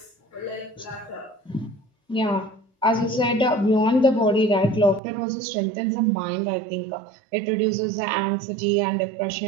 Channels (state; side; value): drops out; left; at 5.0 s